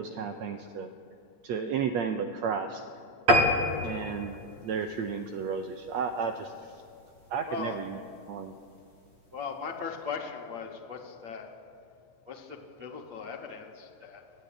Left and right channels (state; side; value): late; left; 8.5 ms